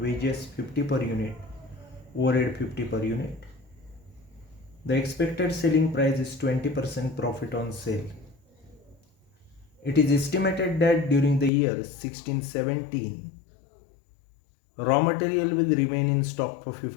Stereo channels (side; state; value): right; drops out; at 11.5 s